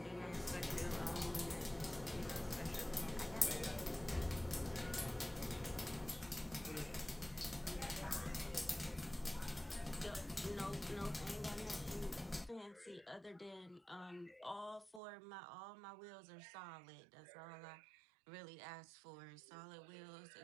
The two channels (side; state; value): left; drops out; at 15.0 s